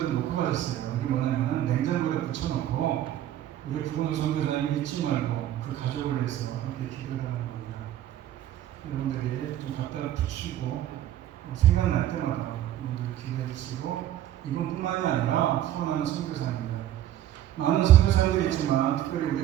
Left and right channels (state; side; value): quieter; left; 12.3 dB